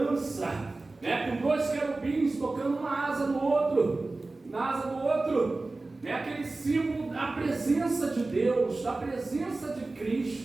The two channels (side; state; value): left; quieter; 3.3 dB